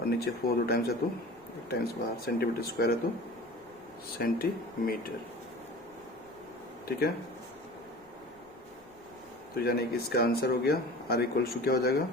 नीचे 4 2 टाइम्स है तो 1 टाइम्स बाहर, सेंटीमीटर स्क्वायर है तो सेंटीमीटर। ठीक है, तो यानी कि इसका आंसर हो गया आर इक्वल्स टू क्या हो जाएगा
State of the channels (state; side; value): noise; left; rumble, 30 dB below the sound